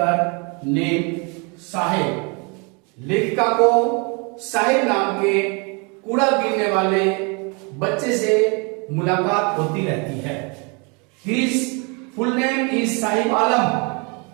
name Sahib. लेखिका को साहिब नाम के कूड़ा बीनने वाले बच्चे से मुलाकात होती रहती है। His full name is Sahib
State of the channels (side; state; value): left; quieter; 32.4 dB